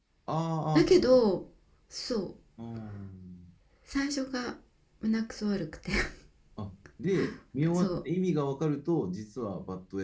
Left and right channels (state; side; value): identical; both; correlation 1.00